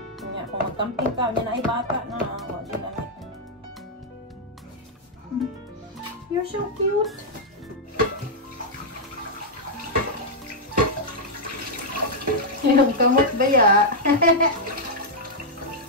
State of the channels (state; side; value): normal; both; correlation -0.05